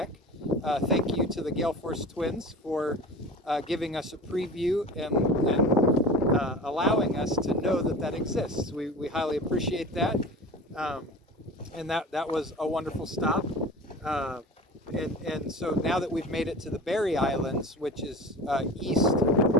Thank you to the Gale Force Twins for giving us a preview and allowing us to know that exists. We highly appreciate that, and that was a wonderful stop. And so now that we've made it to the Berry Islands, which is east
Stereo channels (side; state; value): both; normal; correlation 0.35